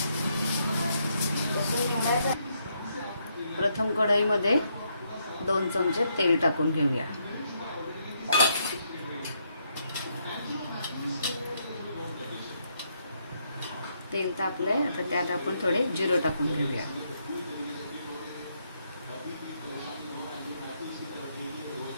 प्रथम कढईमध्ये 2 चमचे तेल टाकून घेऊया। तेल तापले आता त्यात आपण थोडे जिरे टाकून घेऊया।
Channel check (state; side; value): inverted; both; correlation -0.76